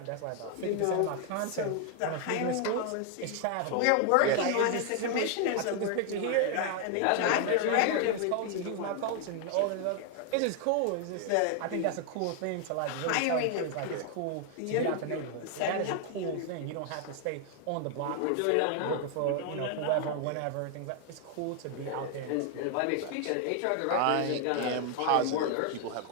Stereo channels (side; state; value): both; different; correlation 0.00